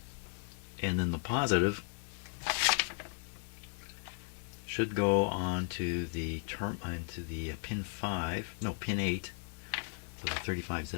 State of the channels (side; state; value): right; silent; 54 dB below the other